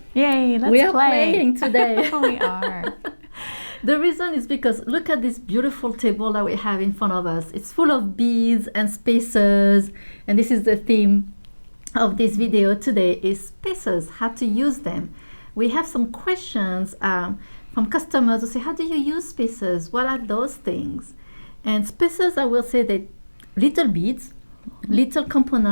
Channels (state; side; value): inverted; both; correlation -1.00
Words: Yay, let's play. We are playing today. We are. The reason is because look at this beautiful table that we have in front of us. It's full of beads and spacers, and this is the theme of this video today is spacers, how to use them. We have some questions from customers who say, how do you use spacers? What are those things? And spacers, I will say that little beads, little